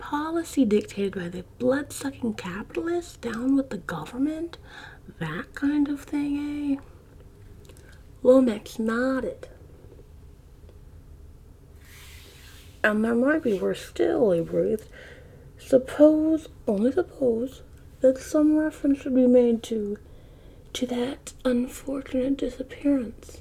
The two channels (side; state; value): both; identical; correlation 1.00